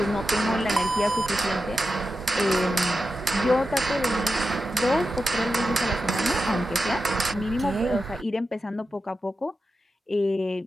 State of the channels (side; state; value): both; normal; correlation 0.90